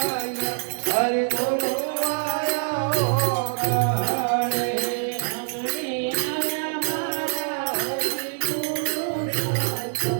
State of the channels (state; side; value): silent; left; 62 dB below the other